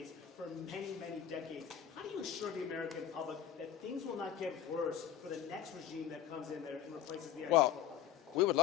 for many, many decades. How do you assure the American public that things will not get worse for the next regime that comes in there and replaces the Well, we would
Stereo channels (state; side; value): quieter; right; 9.8 dB